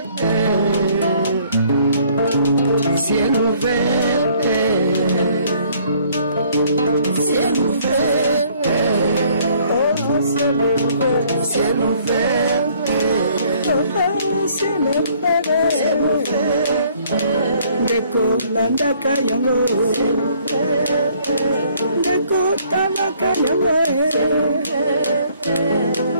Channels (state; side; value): inverted; both; correlation -0.62